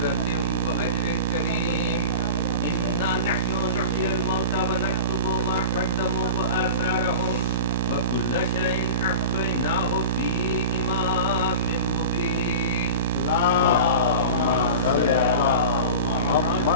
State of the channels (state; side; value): inverted; both; correlation -0.31